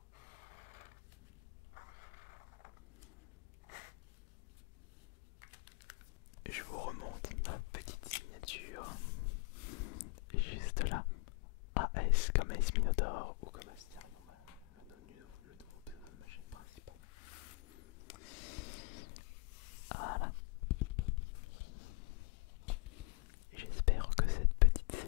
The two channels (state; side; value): quieter; right; 27.3 dB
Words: Je vous remonte ma petite signature juste là. AS comme AS Minotaur ou comme Asterion, le nouveau pseudo de ma chaîne principale. Voilà. J'espère que cette petite